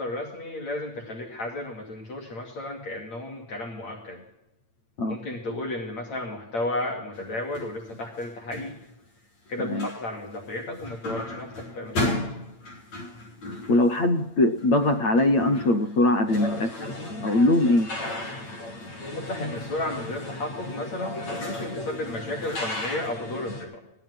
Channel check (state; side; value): late; right; 8.8 ms